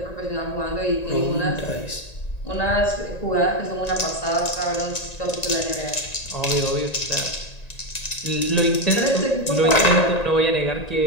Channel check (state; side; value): late; right; 1.9 ms